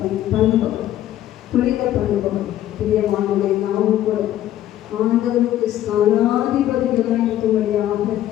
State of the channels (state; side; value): quieter; right; 12.7 dB